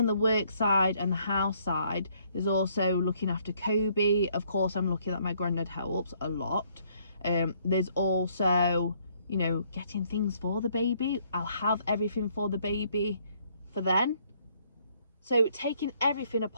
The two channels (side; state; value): both; inverted; correlation -0.66